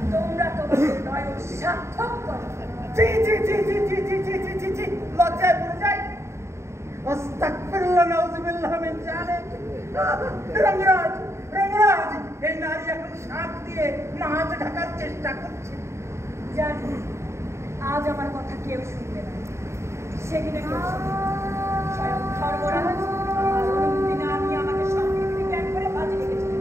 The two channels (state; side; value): late; left; 0.13 ms